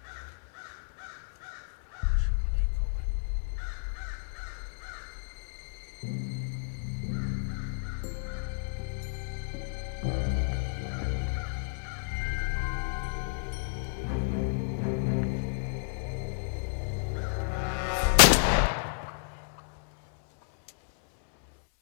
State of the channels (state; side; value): silent; right; 57 dB below the other